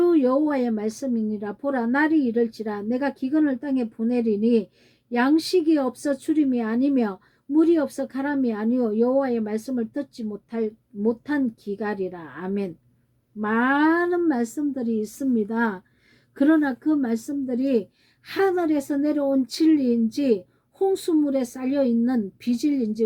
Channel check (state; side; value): identical; both; correlation 1.00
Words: 여호와의 말씀이니라. 보라, 날이 이를지라 내가 기근을 땅에 보내리니 양식이 없어 주림이 아니며 물이 없어 가람이 아니요 여호와의 말씀을 듣지 못한 기갈이라. 아멘. 많은 말씀들이 있습니다. 그러나 그 말씀들이 하늘에서 내려온 진리인지 홍수물에 쌓여있는 비진리인지